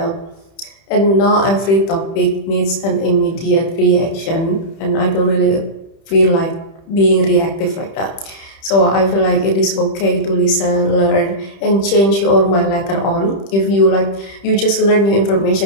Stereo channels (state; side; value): late; right; 30 ms